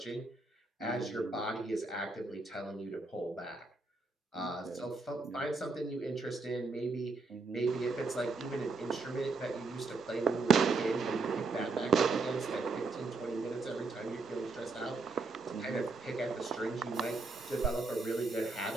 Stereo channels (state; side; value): quieter; left; 3.7 dB